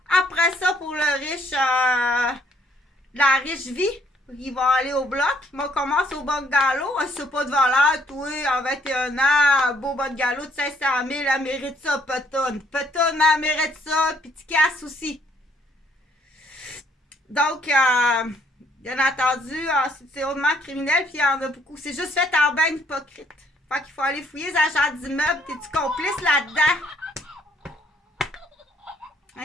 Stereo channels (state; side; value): normal; both; correlation 0.66